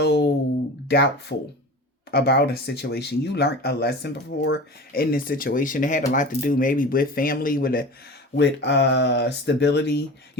doubtful about a situation. You learned a lesson before in this situation. It had a lot to do maybe with family, with stability.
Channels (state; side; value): normal; both; correlation 0.34